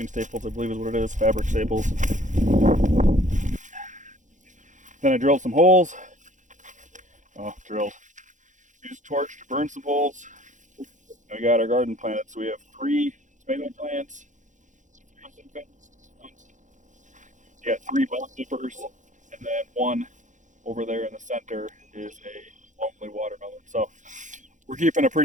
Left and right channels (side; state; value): left; late; 0.36 ms